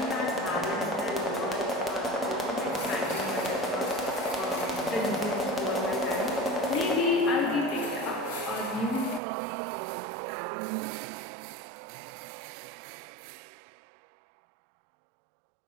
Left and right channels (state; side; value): drops out; left; at 9.2 s